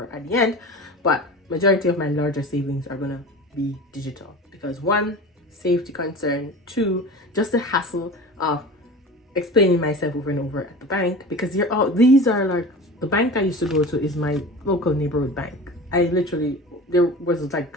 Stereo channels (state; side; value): normal; both; correlation 0.34